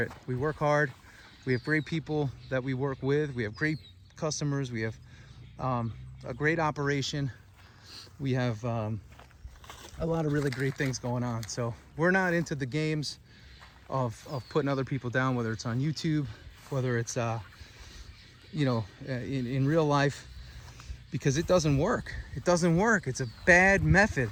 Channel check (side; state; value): both; identical; correlation 1.00